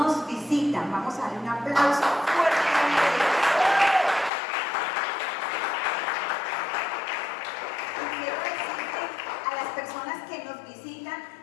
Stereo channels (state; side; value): drops out; right; at 4.3 s